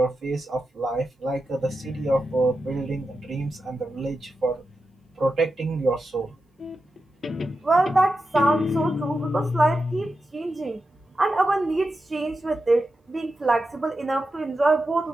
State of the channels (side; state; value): both; normal; correlation 0.90